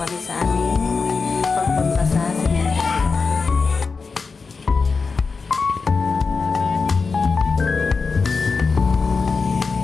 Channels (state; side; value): quieter; right; 4.6 dB